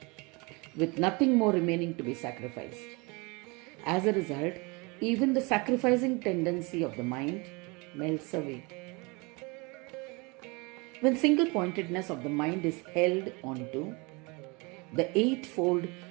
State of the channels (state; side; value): quieter; left; 28.1 dB